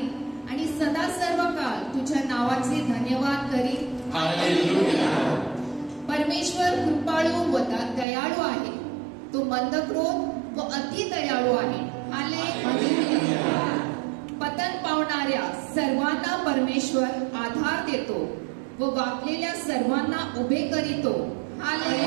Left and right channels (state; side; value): drops out; left; at 8.1 s